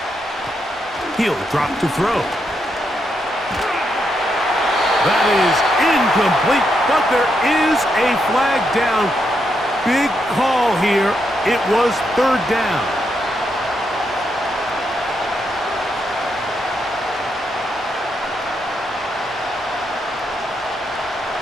He'll drop to throw. That is incomplete, but there is a flag down. Big call here. It was third down.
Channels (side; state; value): both; normal; correlation 0.81